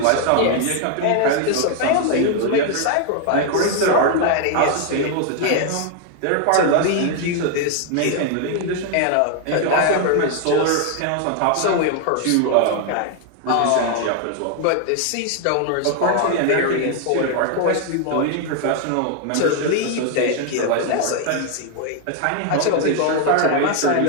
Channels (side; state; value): both; different; correlation 0.00